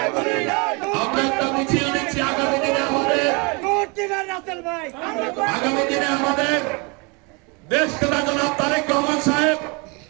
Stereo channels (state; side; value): quieter; left; 30.3 dB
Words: আমরা একটা মিছিল দিচ্ছি আগামী দিনে আমাদের দেশ নেতা জনাব তারেক রহমান সাহেব